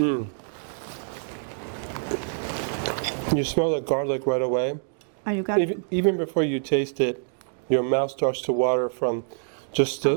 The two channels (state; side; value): silent; left; digital silence